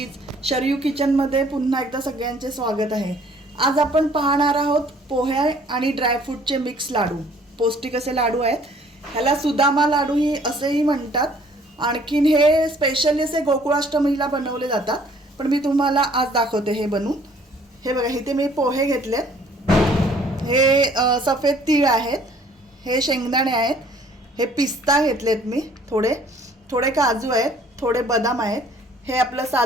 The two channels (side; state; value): both; normal; correlation 0.58